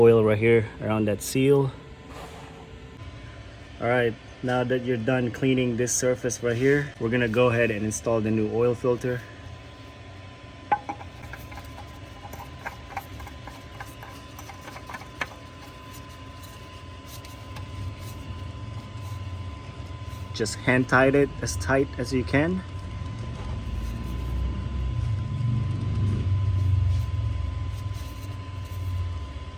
right here around that seal. All right, now that you're done cleaning this surface right here, we're gonna go ahead and install the new oil filter. Just hand tight it as tight as you can.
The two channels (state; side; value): identical; both; correlation 1.00